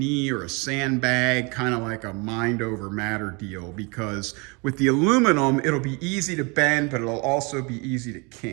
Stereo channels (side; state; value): left; quieter; 30.1 dB